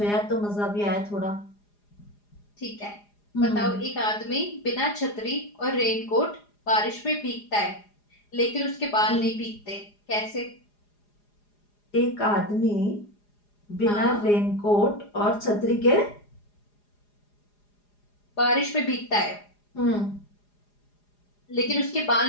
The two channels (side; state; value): right; late; 4.9 ms